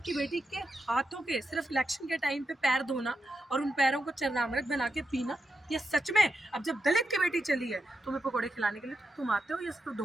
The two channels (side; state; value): both; normal; correlation 0.86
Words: की बेटी के हाथों के सिर्फ इलेक्शन के टाइम पे पैर धोना और उन पैरों को चरनामृत बना के पीना, ये सच में अब जब दलित की बेटी चली है तुम्हें पकोड़े खिलाने के लिए, तो तुम आते हो या सिर्फ